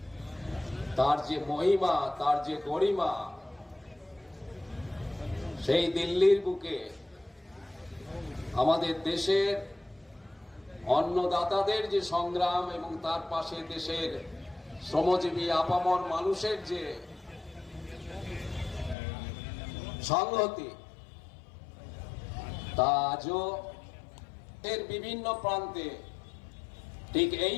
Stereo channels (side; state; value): right; drops out; at 18.9 s